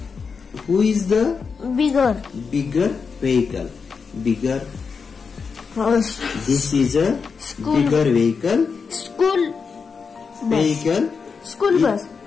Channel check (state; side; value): quieter; right; 5.5 dB